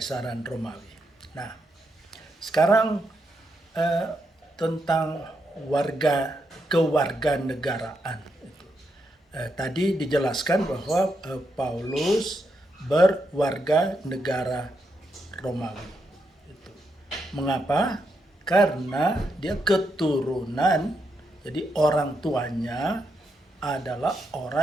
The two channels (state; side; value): normal; both; correlation 0.81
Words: Romawi. Nah, sekarang tentang kewarganegaraan. Tadi dijelaskan bahwa Paulus berwarga negara Romawi. Mengapa? Karena dia keturunan, jadi orang tuanya adalah